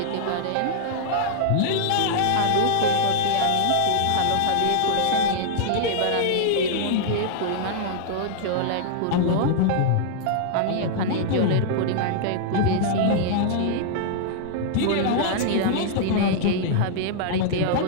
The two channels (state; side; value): different; both; correlation -0.01